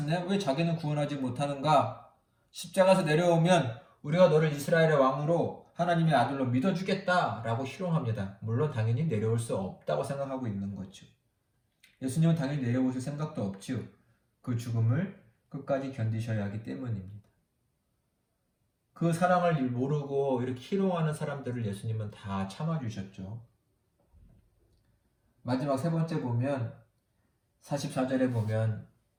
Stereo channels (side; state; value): both; identical; correlation 1.00